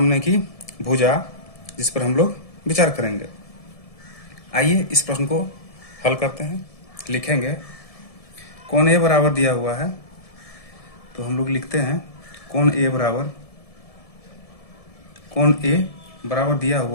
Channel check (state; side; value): late; right; 1.7 ms